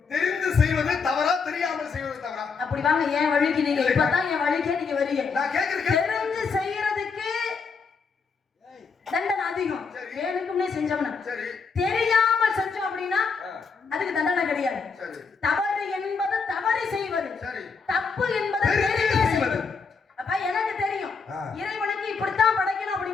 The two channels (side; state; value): right; quieter; 5.2 dB